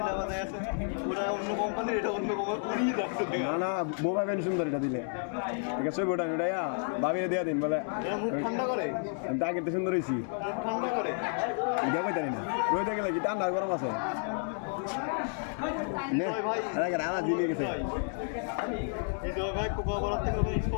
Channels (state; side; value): silent; right; 57 dB below the other